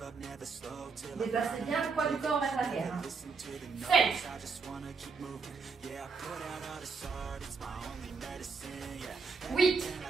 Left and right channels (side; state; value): left; quieter; 4.9 dB